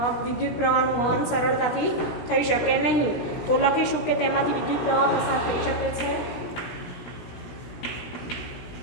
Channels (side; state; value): right; late; 16 ms